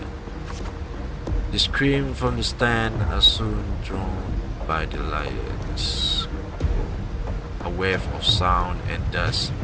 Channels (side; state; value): both; identical; correlation 1.00